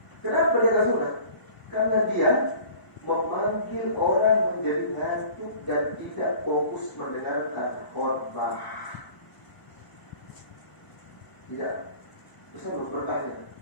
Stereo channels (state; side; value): late; right; 1.0 ms